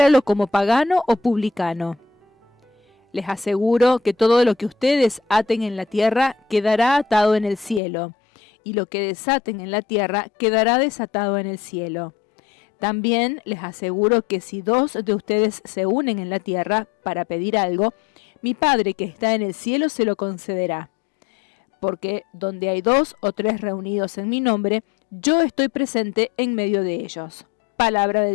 como pagano o publicano. Les aseguro que todo lo que ustedes aten en la tierra quedará atado en el cielo, y lo que desaten en la tierra quedará desatado en el cielo. También les aseguro que si 2 de ustedes se unen en la tierra para pedir algo, mi Padre que está en el cielo se lo concederá. Porque donde hay 2 o 3 reunidos en mi nombre, yo estoy presente en medio de ellos. Palabra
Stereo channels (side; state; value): right; drops out; at 7.8 s